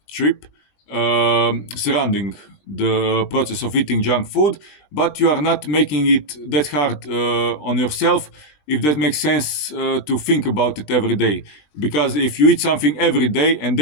trip surrounding the process of eating junk food, but you are not making it that hard on yourself, if that makes sense, to think about it every day. Because if you eat something every day and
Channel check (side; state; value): right; late; 20 ms